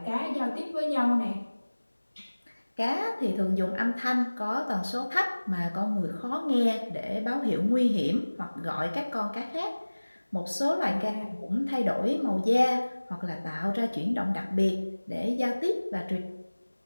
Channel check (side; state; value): both; inverted; correlation -1.00